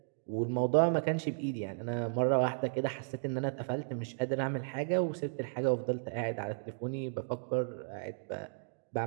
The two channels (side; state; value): left; silent; digital silence